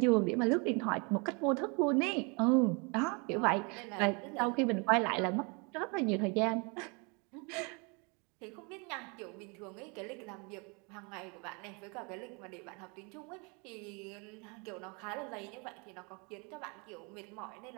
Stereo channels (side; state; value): left; quieter; 31.9 dB